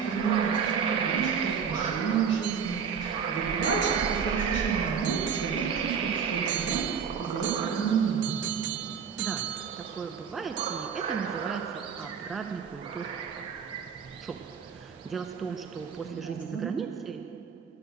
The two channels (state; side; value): quieter; left; 6.7 dB